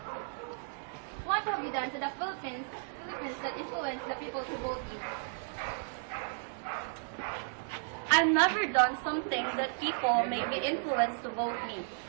what have you done to the Philippines that influence the people to vote you? I've never done something that people may be influenced to vote me.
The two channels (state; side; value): silent; left; 55 dB below the other